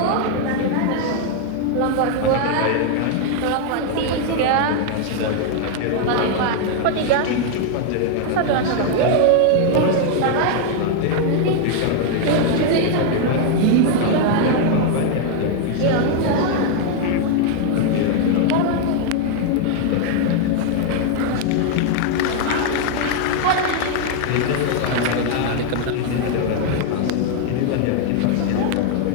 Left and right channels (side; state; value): both; different; correlation 0.00